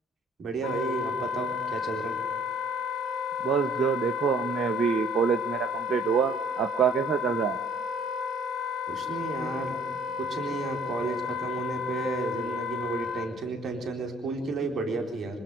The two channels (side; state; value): both; normal; correlation 0.57